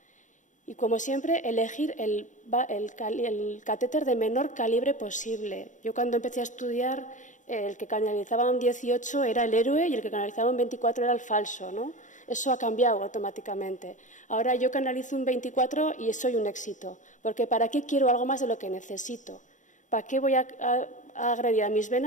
Y, como siempre, elegir el catéter de menor calibre posible. Yo, cuando empecé a estudiar, el que canalizaba un 18 era el héroe y el que canalizaba un 24 era el falso, ¿no? Eso ha cambiado automáticamente. Ahora yo canalizo un 24 y soy un éxito. Porque ¿para qué quiero algo más de lo que necesito? ¿Para qué voy a agredir a mis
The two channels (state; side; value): late; right; 0.36 ms